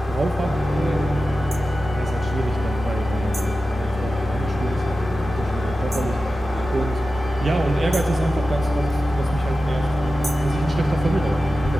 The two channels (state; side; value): normal; both; correlation 0.93